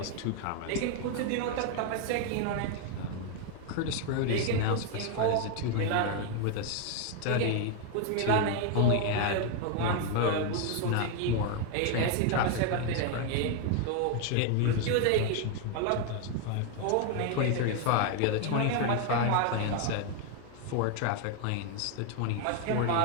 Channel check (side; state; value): both; different; correlation 0.01